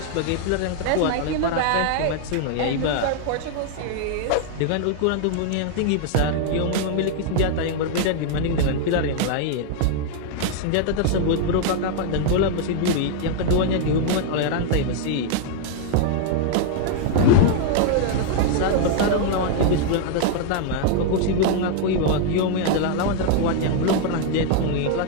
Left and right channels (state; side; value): different; both; correlation 0.00